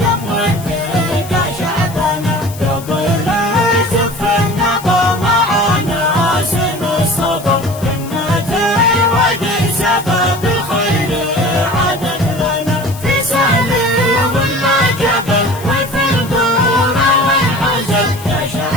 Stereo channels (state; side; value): noise; left; hiss, 17 dB below the sound